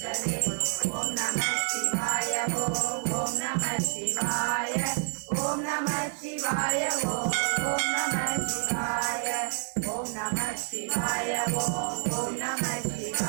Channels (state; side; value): silent; left; 59 dB below the other